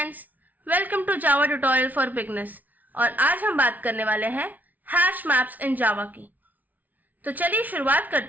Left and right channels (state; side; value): late; left; 0.077 ms